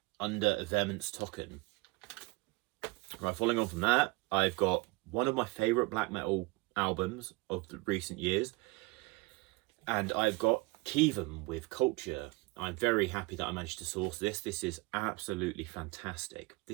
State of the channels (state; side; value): quieter; left; 23.8 dB